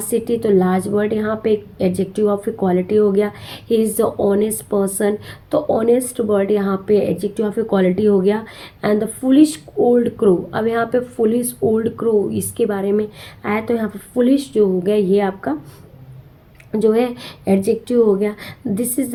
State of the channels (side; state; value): both; identical; correlation 1.00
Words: city, तो लार्ज वर्ड यहाँ पे एडजेक्टिव ऑफ ए क्वालिटी हो गया। He is the honest person, तो ऑनेस्ट वर्ड यहाँ पे एडजेक्टिव ऑफ ए क्वालिटी हो गया। And the foolish old crow, अब यहाँ पे फुलिश ओल्ड क्रो इसके बारे में आया, तो यहाँ पे फुलिश जो हो गया ये आपका जो है एडजेक्टिव हो गया। This is